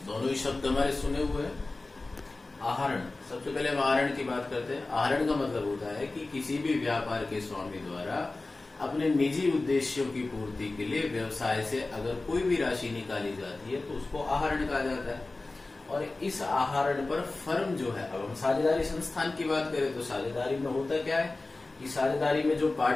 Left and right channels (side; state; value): right; quieter; 3.2 dB